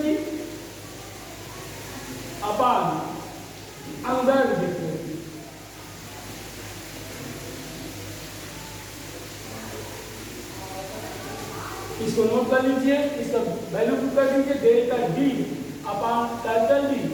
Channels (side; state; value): both; identical; correlation 1.00